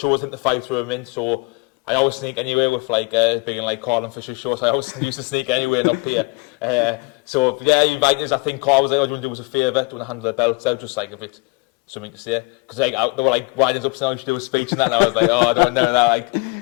I think the fight through them in. So I always sneak anywhere with like being like Carl and Fisher's shows. I always used to sneak anywhere and up here. So yeah, you invite us. I think Carl was like, "I do want to do us a favour, do want to hand the belts out, just like a bit something to say." Because like they were like winding us up saying I should do a speech and that. And I was like, "Oh, I don't know that."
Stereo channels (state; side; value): quieter; right; 29.0 dB